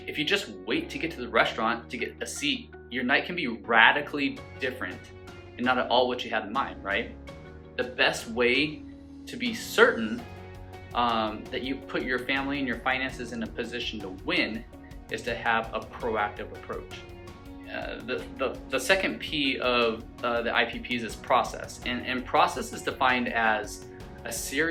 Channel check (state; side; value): identical; both; correlation 1.00